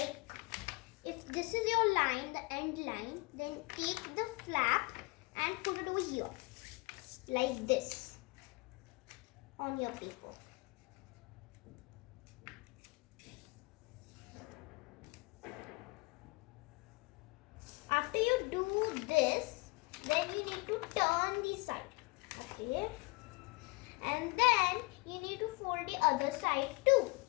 if this is your line, the end line, then take the flap and put it over here. Like this. On your paper. After you do this, then you need to turn the side. Okay. And then you need to fold the other side too.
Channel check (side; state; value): right; quieter; 26.3 dB